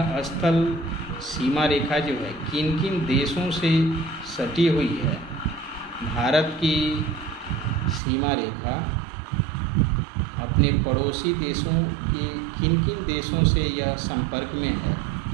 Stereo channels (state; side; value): drops out; left; at 8.0 s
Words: स्थल सीमा रेखा जो है किन किन देशों से सटी हुई है? भारत की सीमा रेखा अपने पड़ोसी देशों के किन किन देशों से यह संपर्क में है?